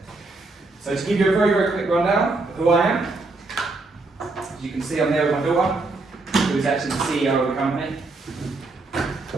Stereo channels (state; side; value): quieter; left; 3.4 dB